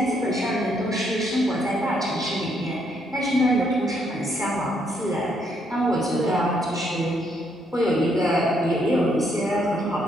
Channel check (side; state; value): both; normal; correlation 0.73